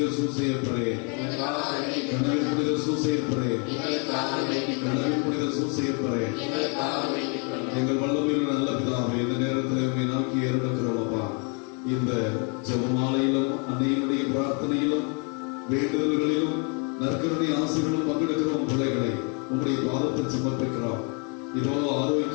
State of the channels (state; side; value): quieter; right; 36.9 dB